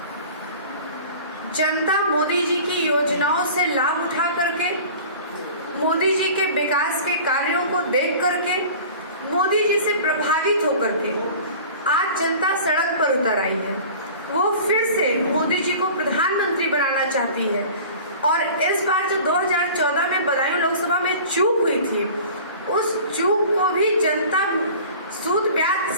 जनता मोदी जी की योजनाओं से लाभ उठा करके, मोदी जी के विकास के कार्यों को देख करके, मोदी जी से प्रभावित होकर के आज जनता सड़क पर उतर आई है। वो फिर से मोदी जी को प्रधानमंत्री बनाना चाहती है। और इस बार जो 2014 में बदायूं लोकसभा में चूक हुई थी, उस चूक को भी जनता सूद ब्याज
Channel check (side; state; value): both; inverted; correlation -0.41